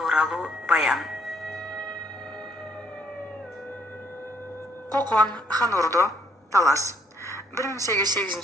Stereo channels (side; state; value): both; normal; correlation 0.67